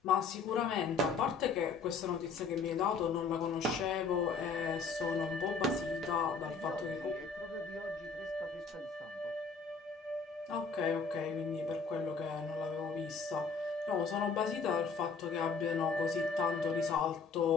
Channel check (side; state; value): right; quieter; 4.9 dB